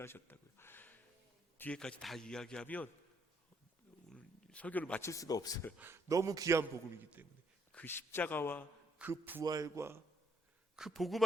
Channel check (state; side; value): normal; both; correlation 0.70